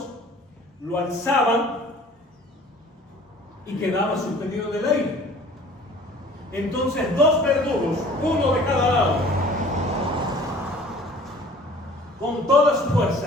lo alzaban y quedaba suspendido del aire. Entonces 2 verdugos, uno de cada lado, con toda su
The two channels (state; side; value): normal; both; correlation 0.49